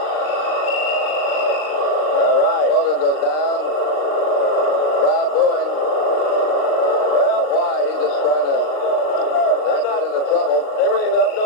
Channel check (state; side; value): late; right; 39 ms